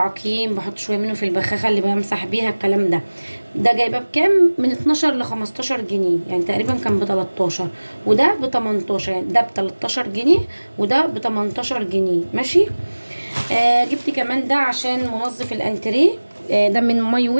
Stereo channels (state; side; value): inverted; both; correlation -1.00